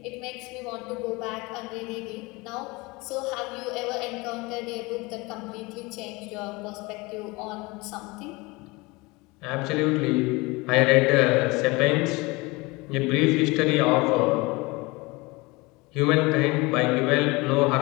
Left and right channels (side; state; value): right; quieter; 24.2 dB